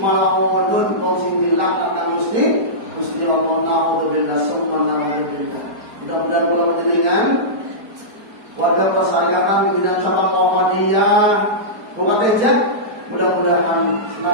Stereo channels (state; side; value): late; left; 4.5 ms